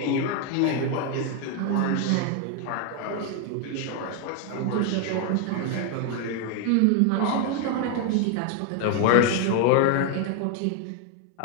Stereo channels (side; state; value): both; different; correlation 0.01